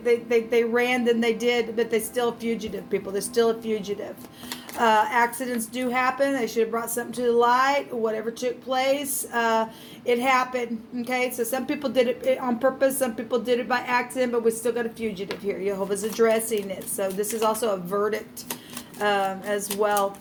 ran, then they did, but they're still fugitive people. They're still a fugitive. Accidents do happen. They should have brought something to the light. Whatever took place, it happened. Okay, so some people did it on purpose. Some people did it by accident, but we still got a fugitive here. Jehovah's addressing it. So this is also a verdict as well.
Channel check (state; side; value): identical; both; correlation 1.00